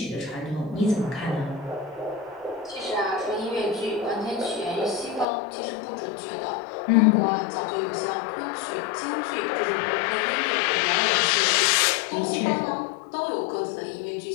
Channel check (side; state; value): right; drops out; at 5.2 s